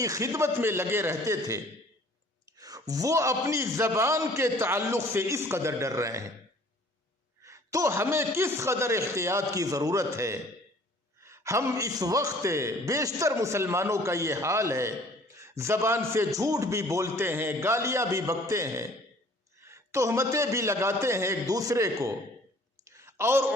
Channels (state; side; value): normal; both; correlation 0.54